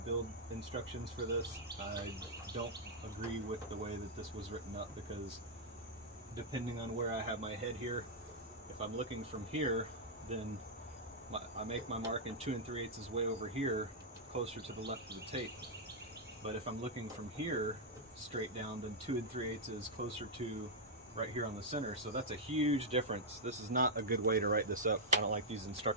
instructions for this. I don't agree with the way that this was written up, because depending on where I have my head here, if I'm looking from here, then I make my mark and 2 3/8 is way over here, closer to the left of the tape. But if I'm looking from here straight down, then 2 3/8 is closer to right here on the center. So that's a huge difference. This is not a good way to write this up. I don't like these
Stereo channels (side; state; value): both; normal; correlation -0.04